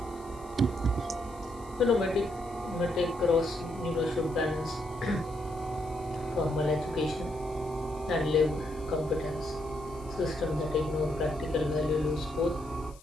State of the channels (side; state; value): left; noise; hiss, 24 dB below the sound